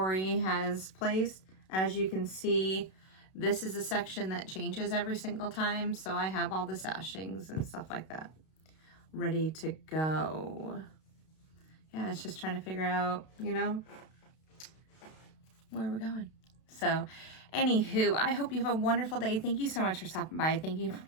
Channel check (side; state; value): right; late; 32 ms